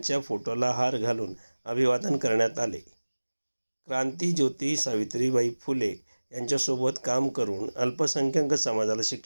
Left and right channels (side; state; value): both; inverted; correlation -1.00